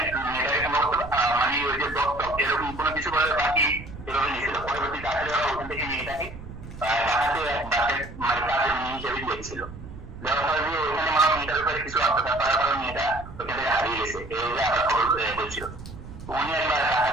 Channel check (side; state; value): right; noise; rumble, 13 dB below the sound